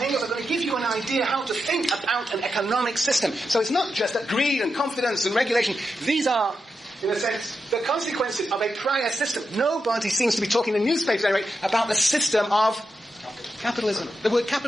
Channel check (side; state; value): both; normal; correlation 0.87